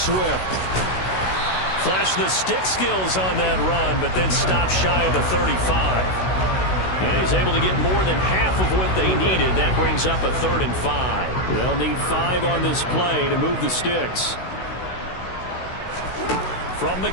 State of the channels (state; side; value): late; right; 16 ms